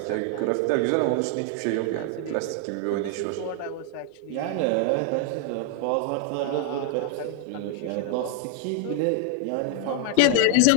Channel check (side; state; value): both; different; correlation 0.00